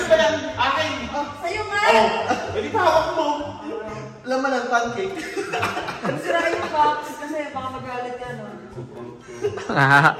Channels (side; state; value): both; identical; correlation 1.00